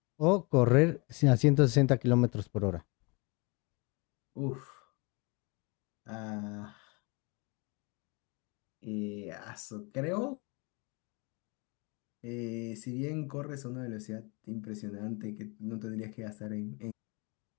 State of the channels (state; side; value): quieter; right; 28.6 dB